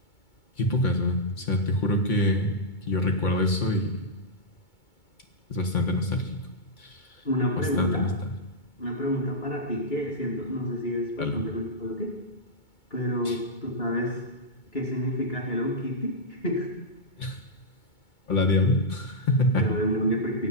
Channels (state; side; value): late; right; 2.2 ms